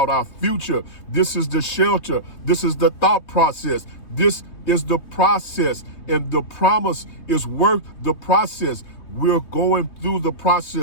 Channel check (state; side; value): late; right; 3.3 ms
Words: our future. This is the shelter. This is the thought process. This is the process, and the promise is worth the process. We're going through the